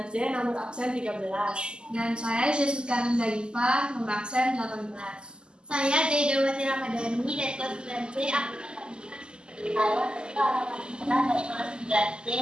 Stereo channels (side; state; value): left; late; 0.048 ms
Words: nomor absen 13. Dan saya Jessica Nindaifa, nomor absen 18. Saya Jaidawati Ramadhani dari kelas 9C,